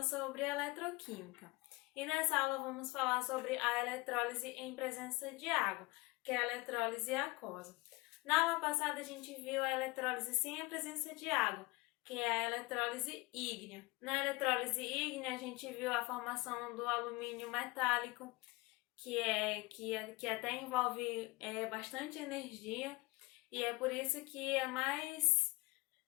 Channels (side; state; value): right; quieter; 23.5 dB